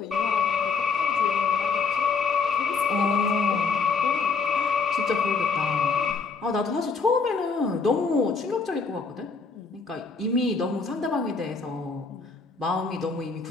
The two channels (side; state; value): right; quieter; 4.7 dB